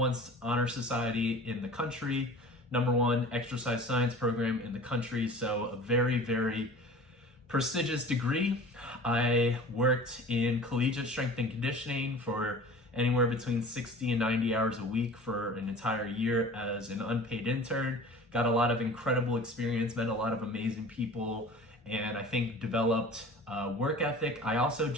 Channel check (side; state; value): both; normal; correlation 0.42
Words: honor society in the country, #1 exercise science program in the country. So a very, very prestigious degree. I worked in collegiate strength and conditioning for anywhere between 60 and 90 hours a week for an entire year as an unpaid intern. Got a lot of incredible experience, met a lot of amazing people, and I think developed work ethic. I also